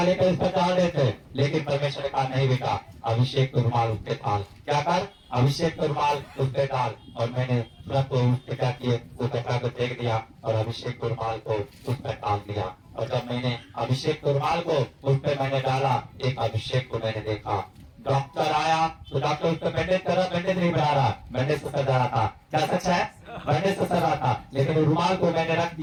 लेकर इस पर डाल रहे थे, लेकिन परमेश्वर ने कहा नहीं बेटा, अभिषेक का रुमाल उस पे डाल। क्या कर? अभिषेक का रुमाल उस पे डाल। और मैंने तुरंत उस पे क्या किए, वो कपड़ा को फेंक दिया और अभिषेक के रुमाल को उस पर डाल दिया। और जब मैंने अभिषेक के रुमाल को उस पे मैंने डाला, एक अभिषेक को मैंने देखा, डॉक्टर आया तो डॉक्टर उस पर बैंडेज कर रहा, बैंडेज नहीं बना रहा, बैंडेज से सर रहा था। क्या सच है? बैंडेज से सर रहा था, लेकिन रुमाल को मैंने रख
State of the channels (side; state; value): both; identical; correlation 1.00